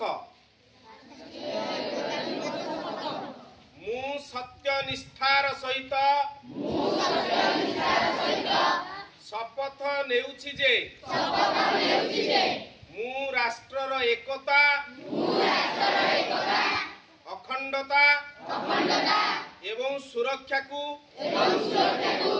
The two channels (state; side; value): identical; both; correlation 1.00